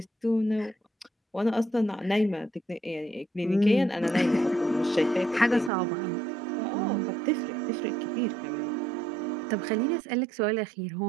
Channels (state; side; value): drops out; left; at 5.7 s